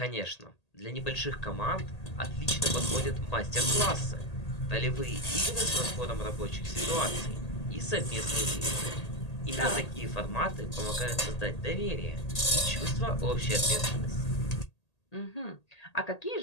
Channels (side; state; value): right; late; 1.8 ms